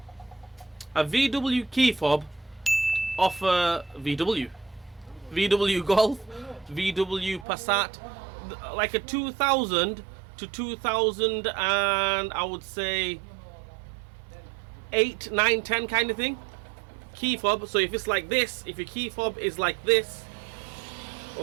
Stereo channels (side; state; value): left; drops out; at 7.5 s